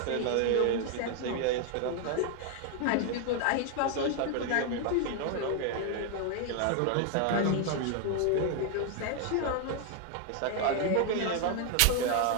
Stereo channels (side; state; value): both; different; correlation 0.00